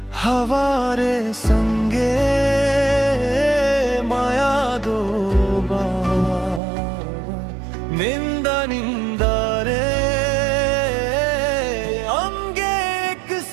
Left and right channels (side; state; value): left; drops out; at 6.6 s